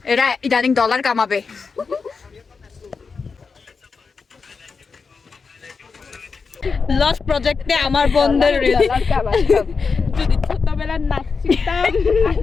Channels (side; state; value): right; quieter; 5.0 dB